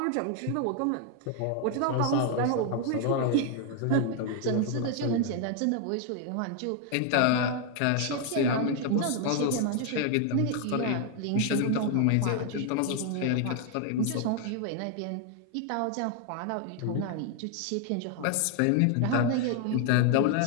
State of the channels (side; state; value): both; different; correlation 0.00